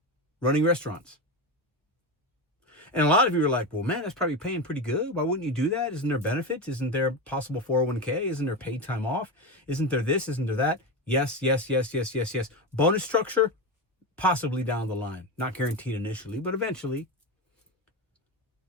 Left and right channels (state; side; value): normal; both; correlation 0.18